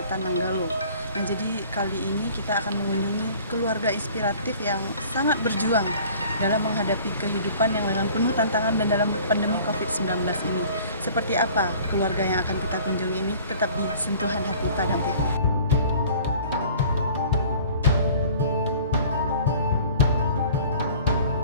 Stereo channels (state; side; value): inverted; both; correlation -0.48